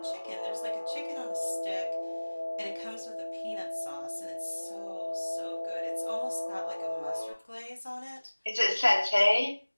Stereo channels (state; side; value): inverted; both; correlation -1.00